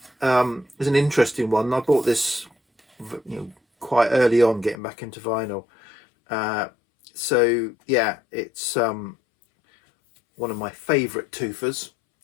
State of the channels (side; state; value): right; drops out; at 4.8 s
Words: is an interesting one. I bought this, you know, quite early on, getting back into vinyl. So yeah, it's one of my favourite Twofers,